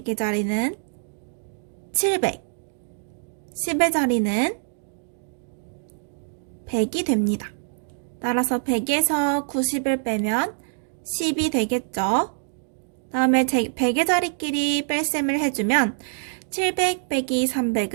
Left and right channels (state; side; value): silent; left; digital silence